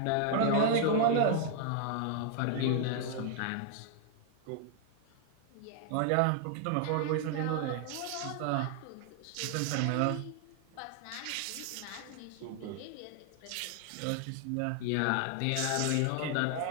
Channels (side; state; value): both; different; correlation 0.00